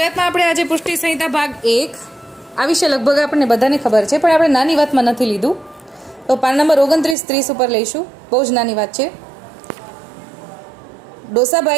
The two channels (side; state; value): left; drops out; at 7.2 s